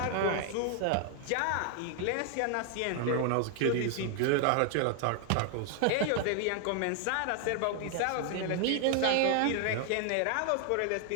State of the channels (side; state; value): both; different; correlation 0.00